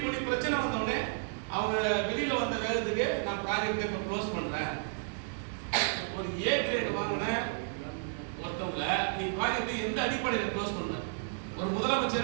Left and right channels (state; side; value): silent; left; digital silence